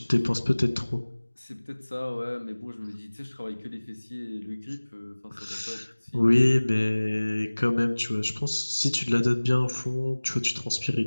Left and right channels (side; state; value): both; inverted; correlation -1.00